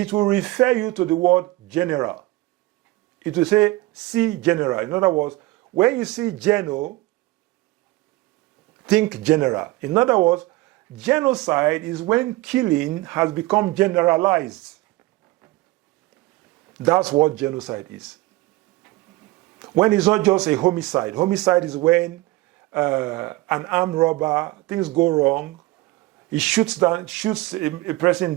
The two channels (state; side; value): quieter; left; 19.3 dB